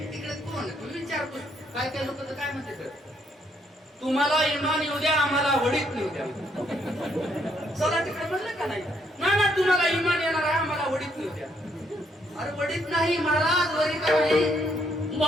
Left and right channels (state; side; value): normal; both; correlation 0.72